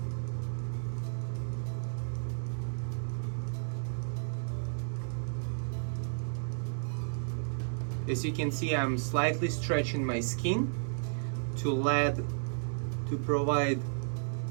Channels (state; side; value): silent; left; digital silence